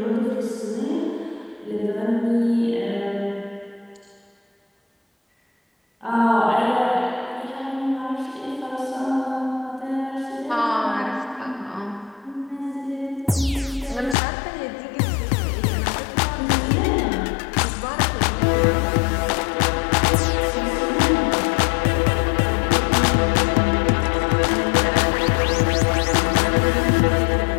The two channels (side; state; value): right; drops out; at 14.2 s